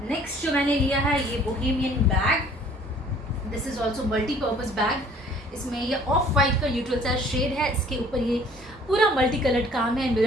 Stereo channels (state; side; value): normal; both; correlation 0.55